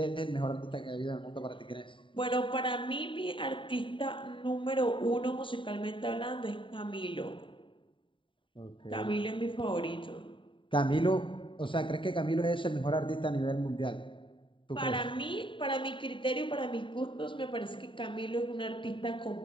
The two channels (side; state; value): right; late; 0.25 ms